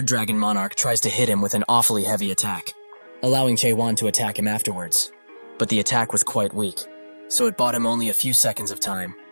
dragon monarch tries to hit him with an awfully heavy attack, allowing Jaewon to attack him afterwards. But the attack was quite weak, so it bought him only a few seconds of time.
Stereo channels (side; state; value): both; inverted; correlation -1.00